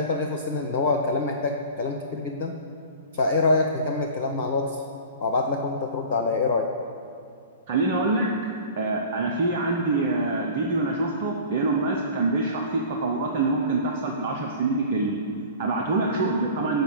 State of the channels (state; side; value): inverted; both; correlation -0.40